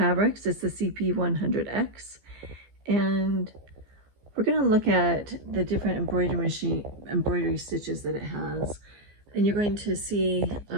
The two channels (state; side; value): late; left; 15 ms